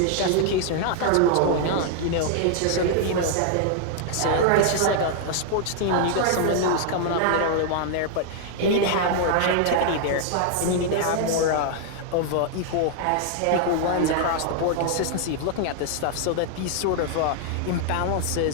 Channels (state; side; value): different; both; correlation 0.00